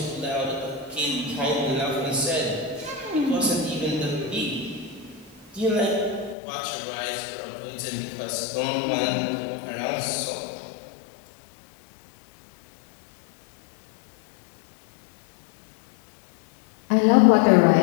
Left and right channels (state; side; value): drops out; right; at 6.4 s